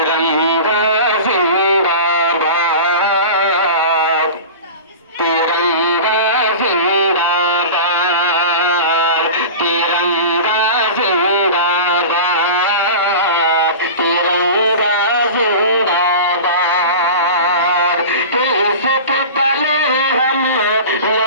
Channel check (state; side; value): inverted; both; correlation -0.32